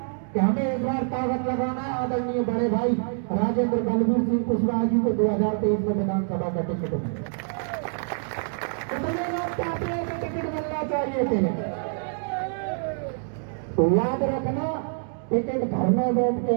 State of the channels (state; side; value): silent; left; 61 dB below the other